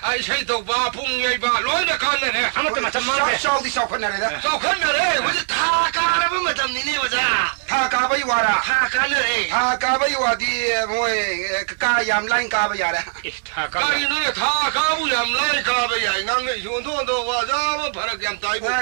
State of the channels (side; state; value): left; silent; digital silence